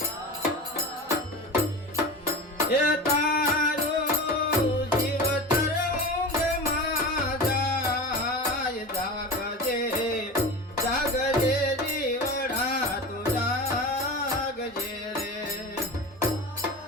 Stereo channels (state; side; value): normal; both; correlation 0.30